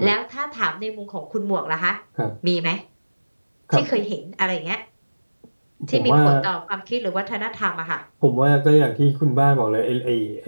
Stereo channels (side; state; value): both; inverted; correlation -1.00